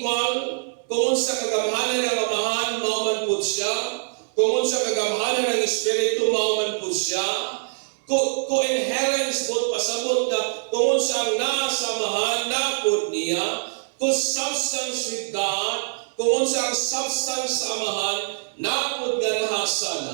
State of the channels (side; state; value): left; silent; digital silence